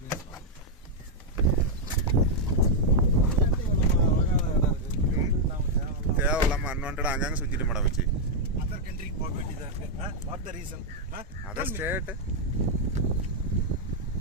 தேவையில்லாமல் அன்வான்டா அங்கங்கே சுற்றிட்டு மேடம் வச்சு அதர் கண்ட்ரிக்கு போக வேண்டியதாக இருக்கு. What the reason? Other state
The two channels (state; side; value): normal; both; correlation -0.02